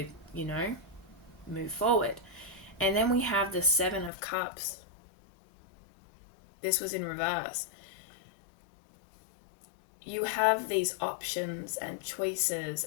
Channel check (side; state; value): right; drops out; at 4.1 s